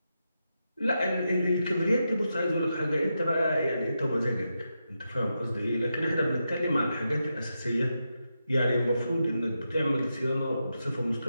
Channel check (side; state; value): both; inverted; correlation -0.87